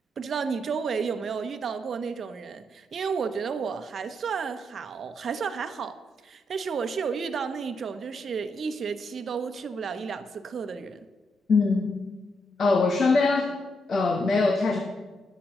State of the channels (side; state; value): both; normal; correlation 0.79